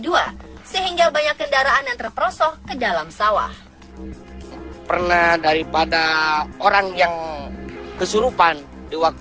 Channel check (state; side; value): identical; both; correlation 1.00